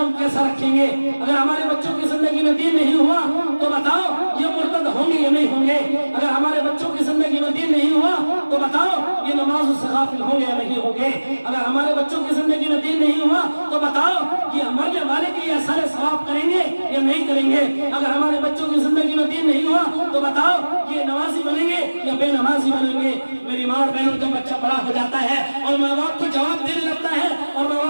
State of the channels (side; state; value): both; inverted; correlation -1.00